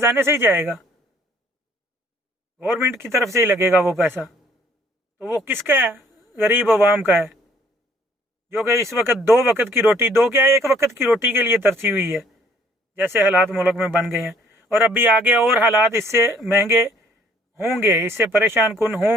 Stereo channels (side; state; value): both; normal; correlation 0.61